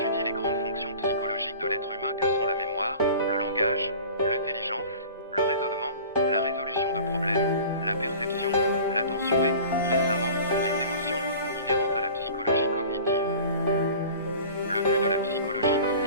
les grandes fonctions psychologiques de l'être humain que sont la mémoire, le langage, l'intelligence, le raisonnement, la résolution de problèmes, la perception, l'attention et, récemment, les émotions, inhérentes à la psychologie cognitive. Le but de la psychologie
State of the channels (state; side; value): inverted; both; correlation -0.42